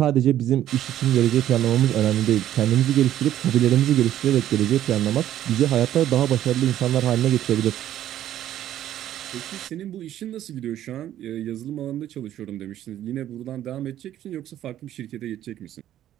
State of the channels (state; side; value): quieter; left; 12.1 dB